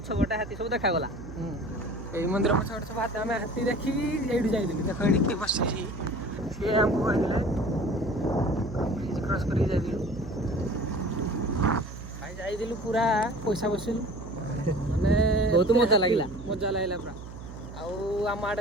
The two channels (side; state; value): right; noise; hum, 12 dB below the sound